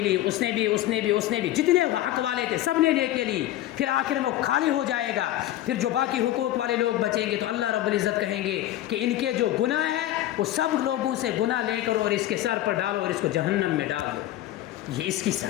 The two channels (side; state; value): right; quieter; 14.1 dB